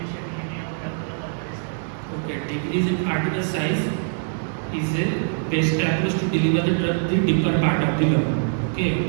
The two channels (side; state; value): left; silent; digital silence